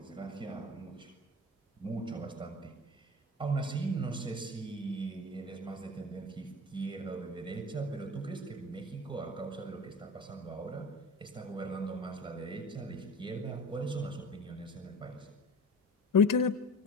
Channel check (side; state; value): both; normal; correlation 0.36